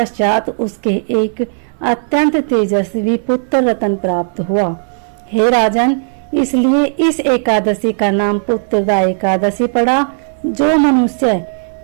उसके एक अत्यंत तेजस्वी पुत्र रत्न प्राप्त हुआ। हे राजन, इसलिए इस एकादशी का नाम पुत्रदा एकादशी पड़ा। जो मनुष्य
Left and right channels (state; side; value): silent; left; digital silence